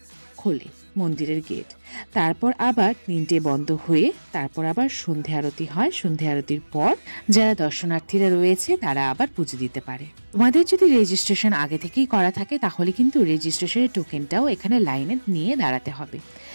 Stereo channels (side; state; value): both; inverted; correlation -1.00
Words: খোলে মন্দিরের গেট। তারপর আবার 3টে বন্ধ হয়ে তারপর আবার সন্ধে আরতি হয়। সন্ধে আরতির পর যারা দর্শনার্থীরা রয়েছে তারা আবার পুজো দিতে পারে। তোমাদের যদি রেজিস্ট্রেশন আগে থেকেই করা থাকে, তাহলে কিন্তু রেজিস্ট্রেশনের টোকেনটাও এখানে লাইনে নিয়ে দাঁড়াতে হবে,